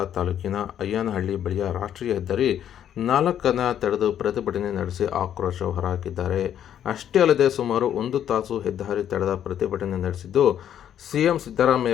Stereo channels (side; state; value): right; quieter; 10.0 dB